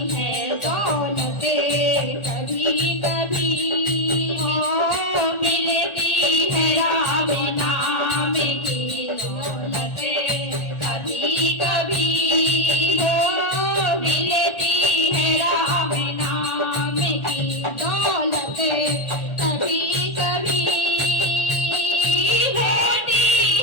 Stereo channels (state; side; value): late; right; 1.4 ms